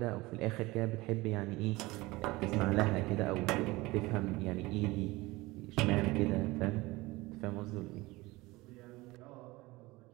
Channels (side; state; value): left; quieter; 21.0 dB